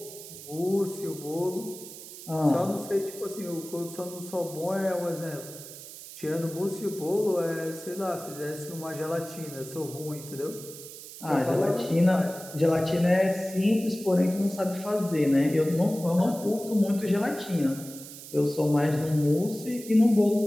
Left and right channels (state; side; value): noise; right; hiss, 14 dB below the sound